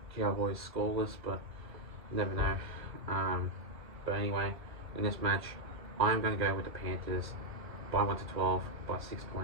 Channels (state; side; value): late; left; 1.1 ms